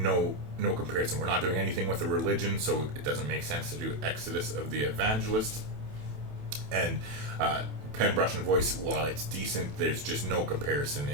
comparison. We're not doing anything with the religion, so it doesn't make sense to do Exodus of the Evangelists. And Pen, Brush, and Voice, while it's decent, there's just no comparison.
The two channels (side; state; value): left; late; 28 ms